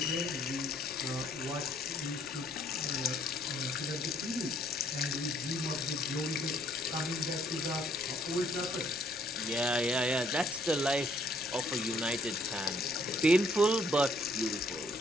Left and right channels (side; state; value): left; noise; rumble, 26 dB below the sound